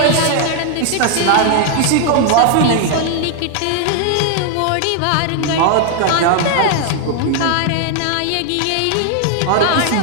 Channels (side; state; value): both; different; correlation 0.00